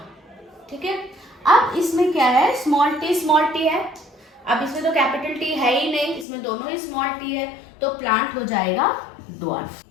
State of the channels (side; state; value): right; drops out; at 6.2 s